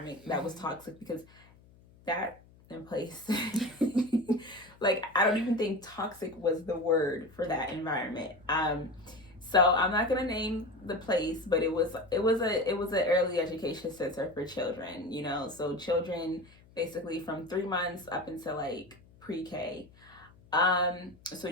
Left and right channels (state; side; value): noise; left; hum, 26 dB below the sound